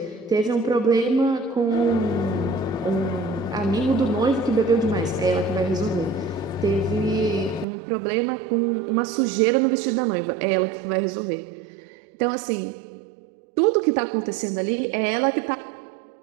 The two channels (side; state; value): left; drops out; at 7.7 s